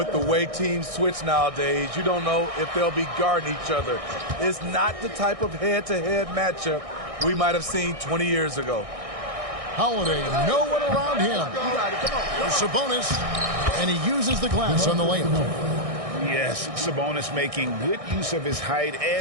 the way teams switch nowadays, you don't know if they'll be guarding each other. It's not the type of head-to-head matchup we might have seen 20 years ago. Holiday, no one around him. Sabonis, and he uses the glass on the layup. Yes, Sabonis making good use of his height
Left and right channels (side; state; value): left; late; 1.6 ms